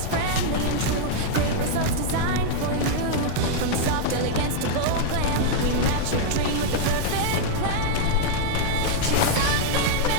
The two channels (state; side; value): different; both; correlation -0.01